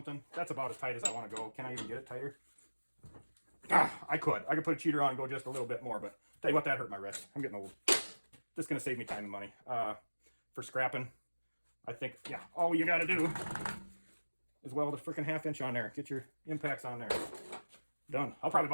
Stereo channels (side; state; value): both; inverted; correlation -1.00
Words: That's about as tight as I want to go. Can I even get it tighter? I could put a cheater on and go just a little bit more, but tell you what, that hurt my wrist. I'm getting old. This is going to save me time and money. For scrapping, I think, yeah, all you got to do is weld a freaking 1/2 inch on there. Get your impacts on there. Done. I'll probably